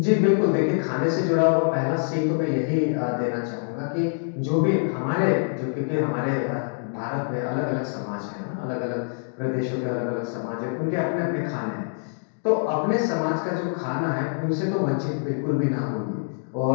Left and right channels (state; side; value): silent; right; digital silence